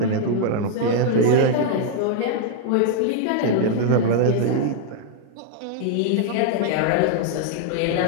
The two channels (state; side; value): different; both; correlation 0.00